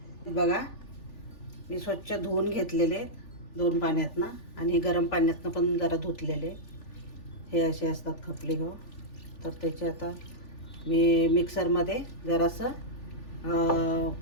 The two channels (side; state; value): right; late; 3.4 ms